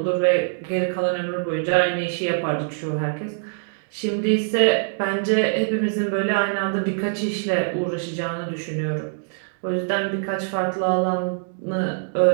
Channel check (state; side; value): silent; left; digital silence